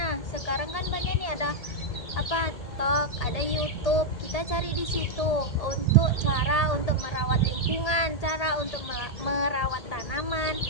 sekarang kan banyak nih ada TikTok, ada YouTube. Kita cari di situ untuk cara untuk merawat lingkungan, cara untuk merawat tanaman.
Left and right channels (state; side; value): late; right; 1.8 ms